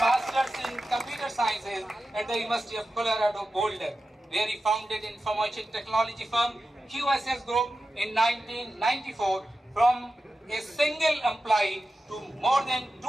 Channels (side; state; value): both; normal; correlation 0.92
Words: in computer sciences at the University of Colorado Boulder, where he founded information technology firm QSS Group in 1994 from a single employee to more than